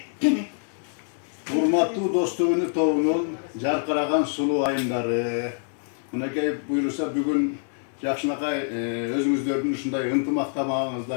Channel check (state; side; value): silent; right; 61 dB below the other